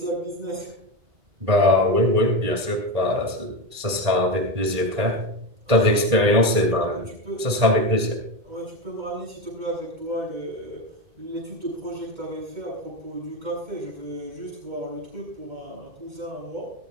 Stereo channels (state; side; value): late; left; 1.8 ms